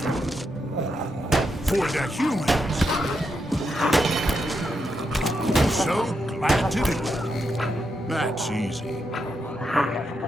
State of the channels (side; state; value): both; normal; correlation 0.83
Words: For the humans. So glad to do it. That's easy.